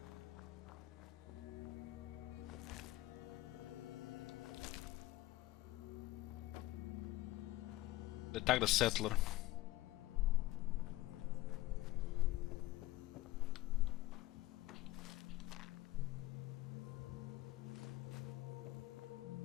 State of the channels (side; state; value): right; quieter; 17.0 dB